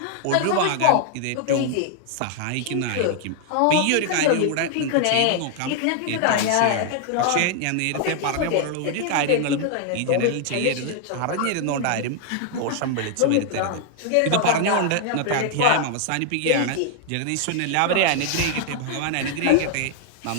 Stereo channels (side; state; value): both; different; correlation 0.00